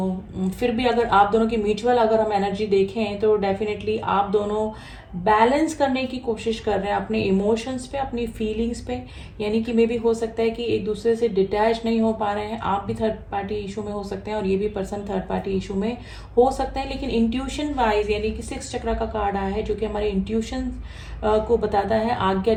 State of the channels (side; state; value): both; identical; correlation 1.00